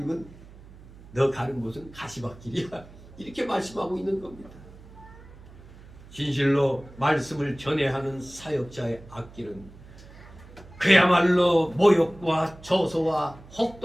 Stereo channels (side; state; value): right; noise; hum, 20 dB below the sound